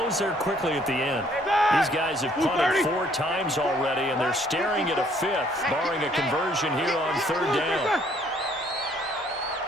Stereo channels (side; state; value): both; normal; correlation 0.63